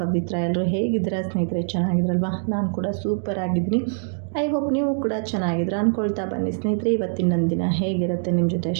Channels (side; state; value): left; silent; digital silence